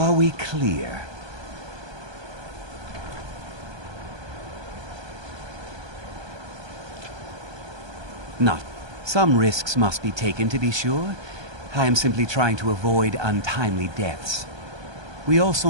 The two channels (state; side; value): late; left; 1.2 ms